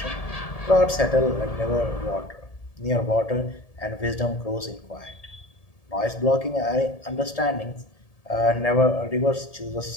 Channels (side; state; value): right; late; 1.7 ms